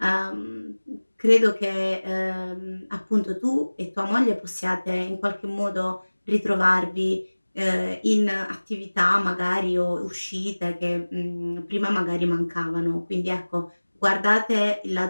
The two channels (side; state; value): both; inverted; correlation -1.00